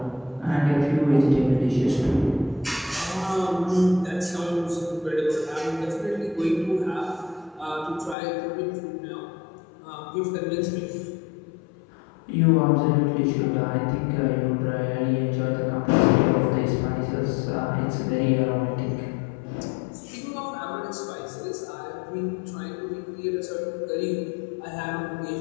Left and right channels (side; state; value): right; drops out; at 8.2 s